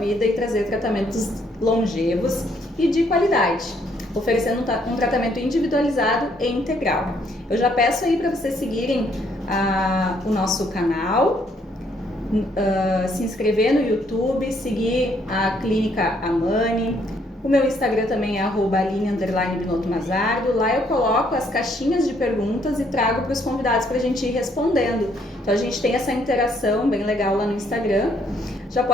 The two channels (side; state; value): both; normal; correlation 0.68